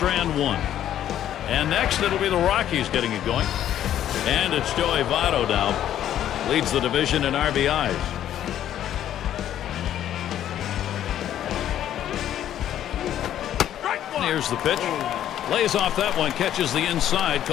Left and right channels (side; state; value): right; quieter; 11.3 dB